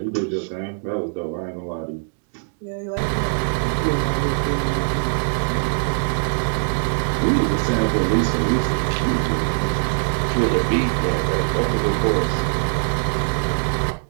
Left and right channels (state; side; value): silent; left; digital silence